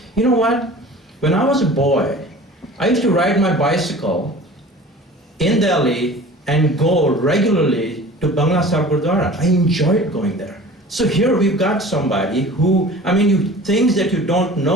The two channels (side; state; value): both; normal; correlation 0.42